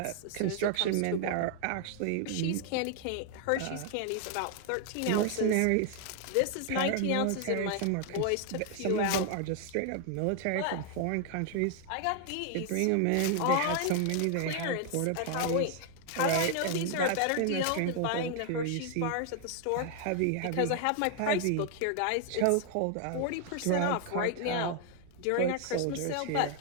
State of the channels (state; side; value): different; both; correlation 0.00